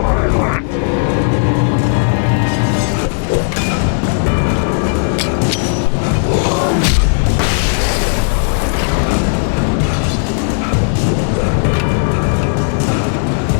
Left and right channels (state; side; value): silent; right; digital silence